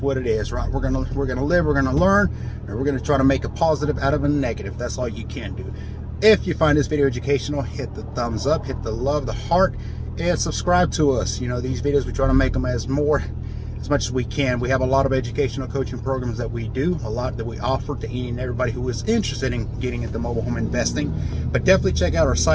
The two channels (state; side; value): identical; both; correlation 1.00